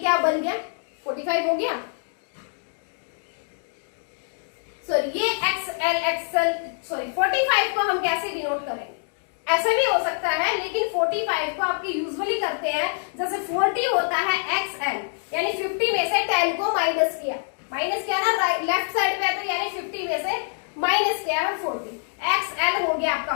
बन गया, 45 हो गया। सॉरी, ये XL 45 को हम कैसे डिनोट करेंगे, ऐसा भी हो सकता है, लेकिन 45 को आपके यूजुअली करते हैं, जैसे 40 होता है XL, यानी 50 में से 10 को माइनस किया ना, लेफ्ट साइड पे, तो यानी 50 में से माइनस किया है 40। XL हो गया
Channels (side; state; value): right; silent; digital silence